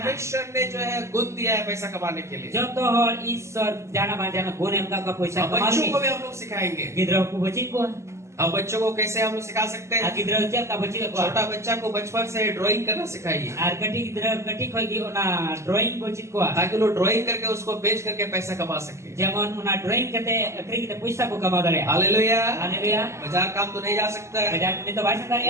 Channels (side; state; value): left; late; 0.13 ms